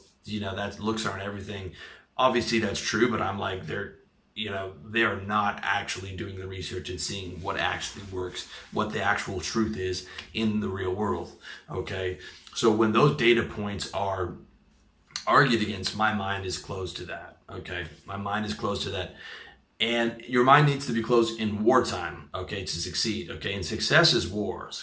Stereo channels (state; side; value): identical; both; correlation 1.00